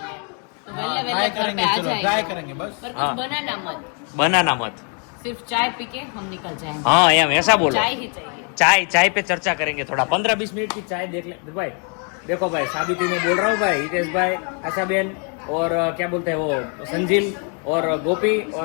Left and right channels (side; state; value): right; quieter; 39.4 dB